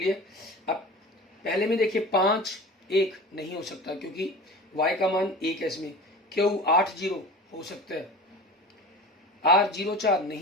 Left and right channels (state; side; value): normal; both; correlation 0.35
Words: अब पहले में देखिए 5 1 नहीं हो सकता क्योंकि y का मान 1 है इसमें। Q 8 0 हो सकता है। R 0 4